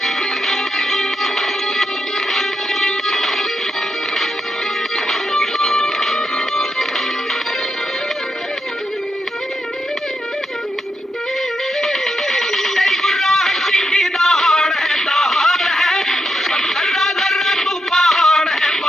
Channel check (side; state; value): both; normal; correlation 0.84